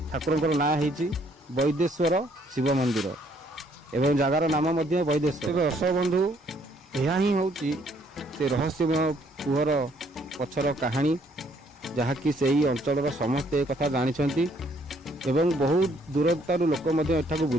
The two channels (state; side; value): normal; both; correlation 0.66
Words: ठाकुर ना है वैदेश्वर शिव मंदिर एवं जगार नाम वैदेश्वर। दर्शक बंधु यह ही हूँ से रहस्यमय कूहर ପଛର କାହାଣୀ ଯାହାକି ସେହି ଅଞ୍ଚଳର ସମସ୍ତେ ଏ କଥା ଜାଣିଛନ୍ତି ଏବଂ ବହୁତ ଦୂରତାରୁ ଲୋକ ମଧ୍ୟ ଏଠାକୁ